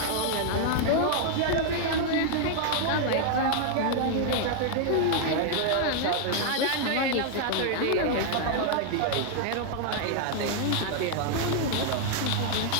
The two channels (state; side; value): different; both; correlation 0.00